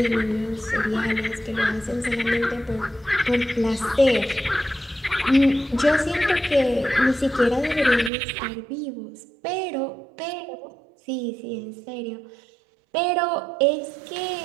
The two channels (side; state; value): left; drops out; at 8.1 s